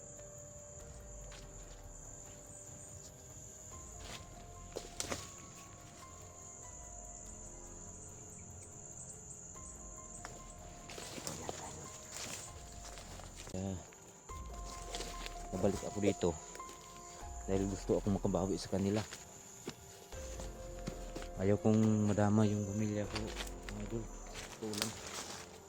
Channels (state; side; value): identical; both; correlation 1.00